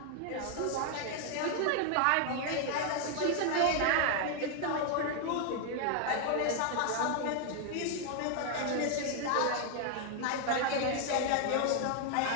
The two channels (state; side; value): different; both; correlation 0.00